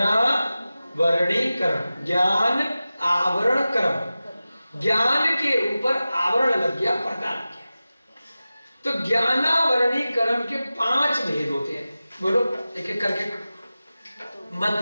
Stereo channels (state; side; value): inverted; both; correlation -0.95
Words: ज्ञान आवरण कर्म। ज्ञान के ऊपर आवरण लग गया, पर्दा लग गया। तो ज्ञानावरणीकरण के 5 भेद होते हैं। बोलो एक एक करके।